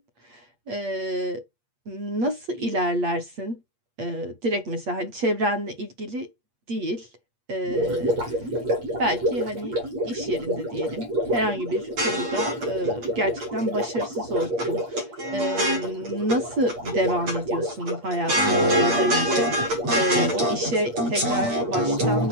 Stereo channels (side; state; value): left; late; 8.5 ms